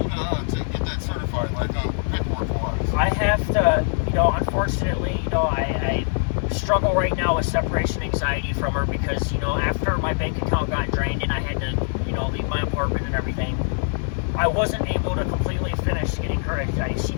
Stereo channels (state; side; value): silent; right; 63 dB below the other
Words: to get that certified, like, paperwork-wise? I have to, you know, unfortunately, you know, I struggle right now with separation anxiety from her, because, you know, after my bank account got drained and I had to, you know, leave my apartment and everything, I wasn't able to completely finish getting her. She